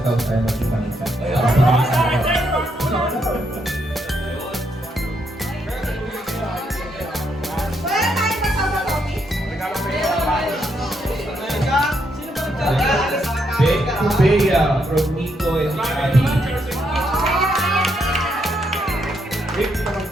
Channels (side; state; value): both; normal; correlation 0.77